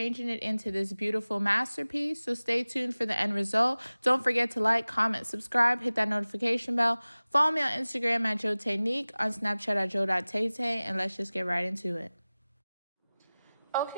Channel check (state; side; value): inverted; both; correlation -0.98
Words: it into this beautiful masterpiece. So stay tuned for the end result. Don't forget to like, comment, subscribe, hit that notification bell. Follow me on Instagram at jo.taynique, on Snapchat at jo.taytay, and let's just get right into it.